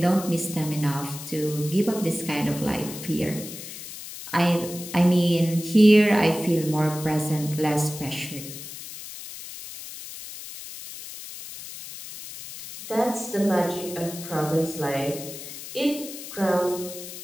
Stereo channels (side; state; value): left; noise; hiss, 12 dB below the sound